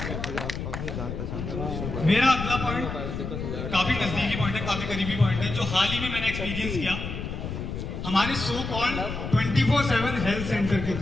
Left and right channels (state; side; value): noise; left; rumble, 5 dB below the sound